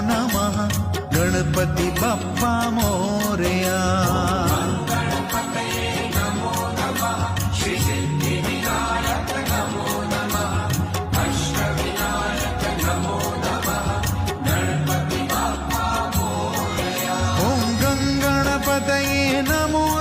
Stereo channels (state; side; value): identical; both; correlation 1.00